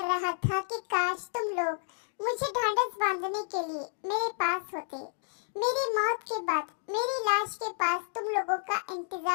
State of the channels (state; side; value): silent; right; digital silence